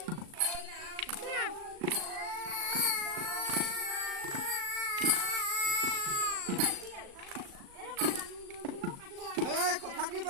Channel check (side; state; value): left; late; 37 ms